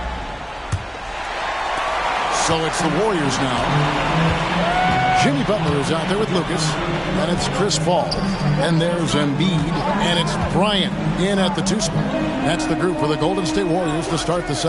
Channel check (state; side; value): identical; both; correlation 1.00